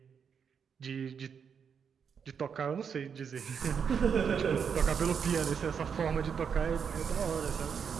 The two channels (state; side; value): quieter; left; 6.9 dB